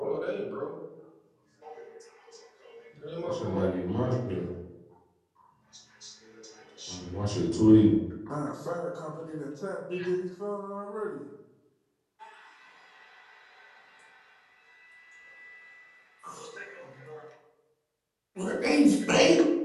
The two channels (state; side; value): identical; both; correlation 1.00